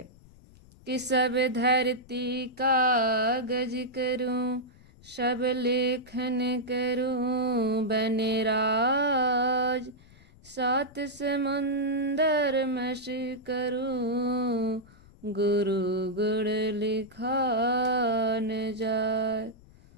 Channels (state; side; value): noise; left; rumble, 24 dB below the sound